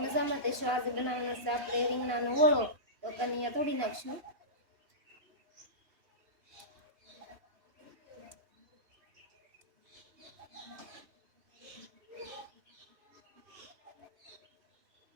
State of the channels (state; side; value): late; left; 2.9 ms